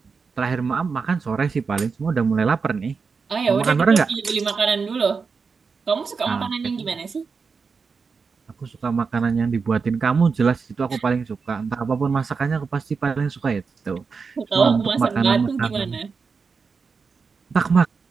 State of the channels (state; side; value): quieter; left; 5.1 dB